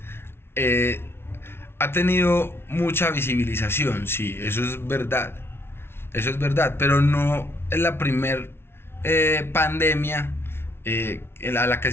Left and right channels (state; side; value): late; right; 0.12 ms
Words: eh, ha tenido mucha visibilización, sí, eso es verdad, pero no es la primer pandemia a la que